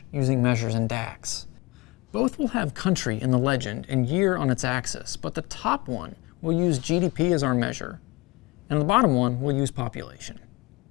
using measures in DAX. Both will have country in the legend and year on its axis, but the top one will use GDP as our measure, and the bottom one will use population.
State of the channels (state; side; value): quieter; right; 23.8 dB